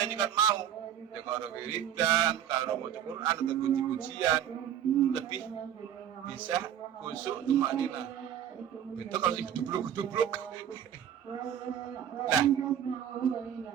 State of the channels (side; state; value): left; quieter; 9.8 dB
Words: kan mau. Ya kalau wiridan, kalau baca Quran atau puji-pujian lebih bisa khusyuk tumanina. Beda kalau si gedubluk. Nah,